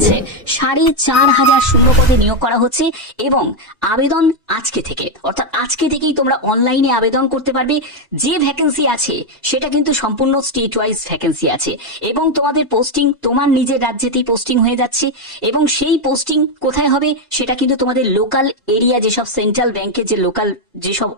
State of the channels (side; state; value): both; normal; correlation 0.04